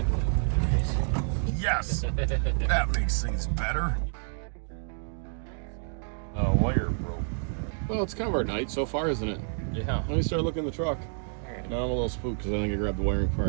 Yes. That makes things better. Wire broke. Well, it's kind of our night so far, isn't it? Yeah. Let me start looking in the truck. Alright. Now I'm a little spooked because I think I grabbed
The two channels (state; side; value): silent; left; digital silence